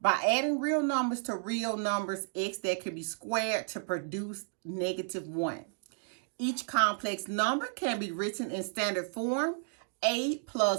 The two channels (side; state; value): left; silent; 56 dB below the other